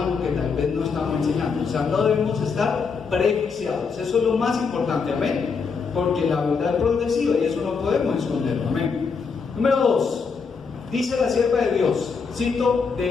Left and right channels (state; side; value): quieter; right; 5.3 dB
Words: que tal vez no estamos enseñando. O sea, no debemos estar prejuiciados. Eso es lo más importante, amén. Porque la verdad es progresiva y eso no podemos esconderlo, amén. Número 2, dice la sierva de Dios, cito